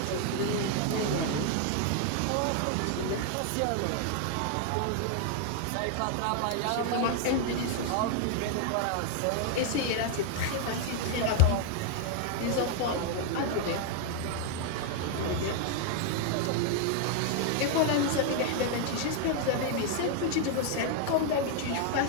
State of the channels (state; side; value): different; both; correlation 0.00